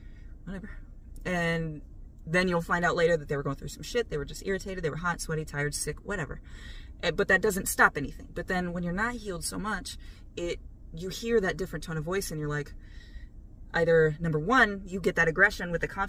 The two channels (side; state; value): both; identical; correlation 1.00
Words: whatever. And then you'll find out later that they were going through some shit. They were just irritated. They were hot, sweaty, tired, sick, whatever. But that doesn't stop anything. But then when you're not healed so much, you hear that different tone of voice, and you're like, either, number one, you get that aggression with the